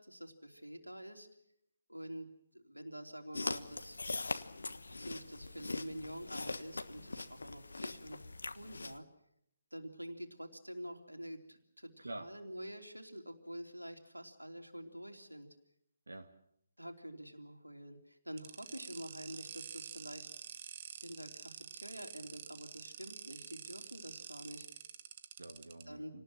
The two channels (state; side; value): inverted; both; correlation -0.91